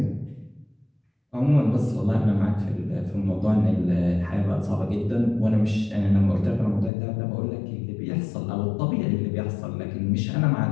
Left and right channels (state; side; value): drops out; right; at 6.9 s